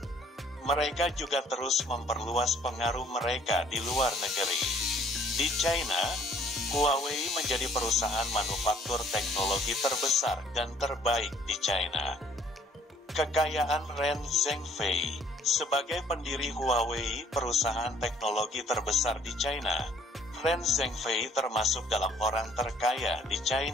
Mereka juga terus memperluas pengaruh mereka di luar negeri. Di China, Huawei menjadi perusahaan manufaktur teknologi terbesar dan terbaik di China. Kekayaan Ren Zhengfei sebagai pendiri Huawei, perusahaan teknologi terbesar di China. Ren Zhengfei termasuk dalam orang terkaya di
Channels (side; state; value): both; normal; correlation 0.59